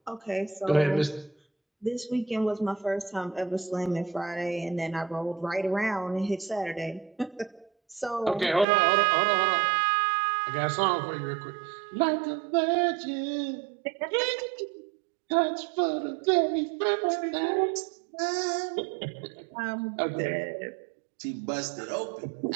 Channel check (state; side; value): drops out; left; at 8.7 s